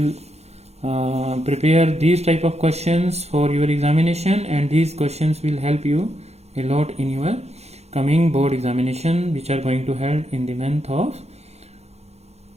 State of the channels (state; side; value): late; left; 0.31 ms